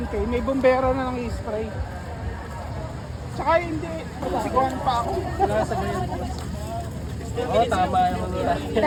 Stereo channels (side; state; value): both; identical; correlation 1.00